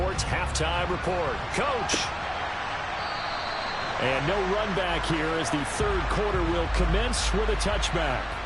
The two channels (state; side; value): identical; both; correlation 1.00